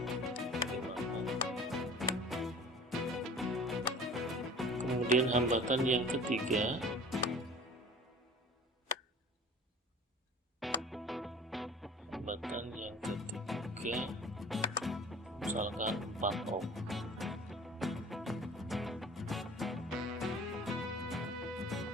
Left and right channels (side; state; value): both; normal; correlation 0.44